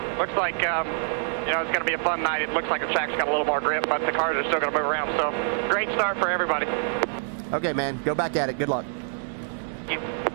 looks like, it's going to be a fun night. It looks like the track's got a little more grip, but the cars are still going to move around. So great start for everybody. Okay, man, go back at it. Good luck. Thank you.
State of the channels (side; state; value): left; silent; digital silence